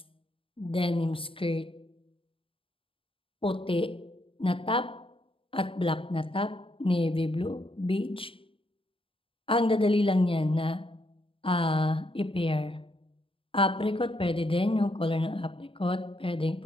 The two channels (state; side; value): late; right; 0.26 ms